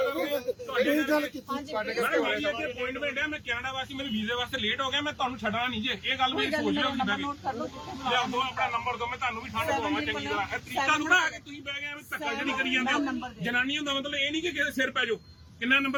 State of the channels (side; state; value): both; identical; correlation 1.00